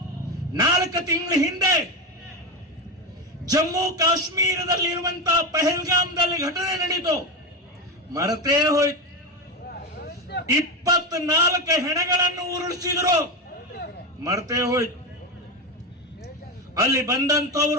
4 ತಿಂಗಳ ಹಿಂದೆ ಜಮ್ಮು ಕಾಶ್ಮೀರದಲ್ಲಿ ಇರುವಂತಹ ಪಹಲ್ಗಾಮ್ದಲ್ಲಿ ಘಟನೆ ನಡೀತು, ಮರೆತೇ ಹೋಯ್ತು. 24 ಹೆಣಗಳನ್ನು ಉರುಳಿಸಿದ್ರು, ಮರೆತೇ ಹೋಯ್ತು. ಅಲ್ಲಿ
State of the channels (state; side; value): normal; both; correlation 0.15